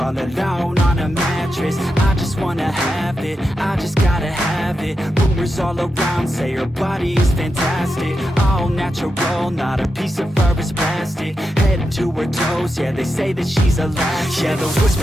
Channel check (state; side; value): normal; both; correlation 0.88